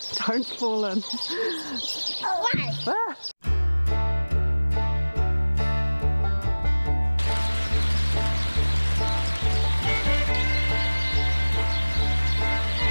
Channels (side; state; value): both; inverted; correlation -1.00